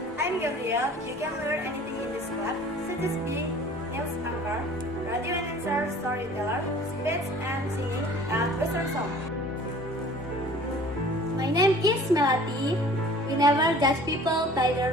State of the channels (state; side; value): normal; both; correlation 0.47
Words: I'm Gabriel. You can learn anything in this club, such as being news anchor, radio announcer, storyteller, speech and singing, and western song. My name is Melati. We never judge people by